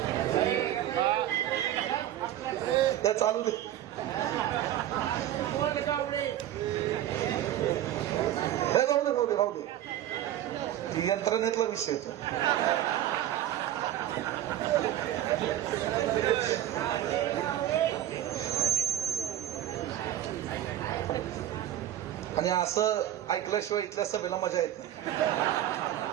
ते चालू दे, राहू दे, ती यंत्रणेतला विषय तो. आणि असं ऐकल्याशिवाय इथल्या सभेला मजा येत नाही.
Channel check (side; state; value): left; quieter; 12.4 dB